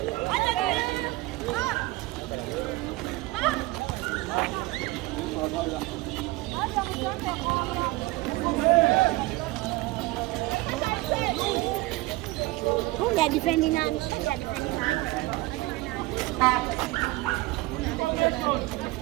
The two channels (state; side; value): quieter; left; 20.6 dB